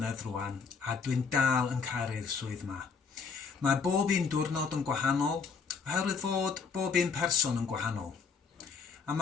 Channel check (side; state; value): right; quieter; 5.5 dB